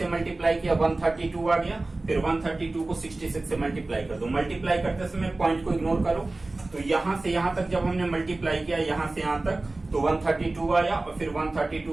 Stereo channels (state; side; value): quieter; left; 3.1 dB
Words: मल्टीप्लाई किया 132 आ गया, फिर 132 को 66 से मल्टीप्लाई कर दो। मल्टीप्लाई करते समय पॉइंट को इग्नोर करो, तो यहां से यहां तक जब हमने मल्टीप्लाई किया यहां से यहां तक, तो 132 आया और फिर